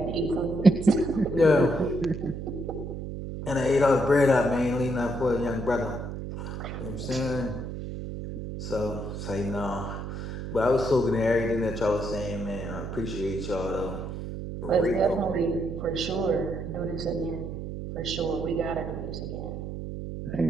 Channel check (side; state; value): right; noise; hum, 7 dB below the sound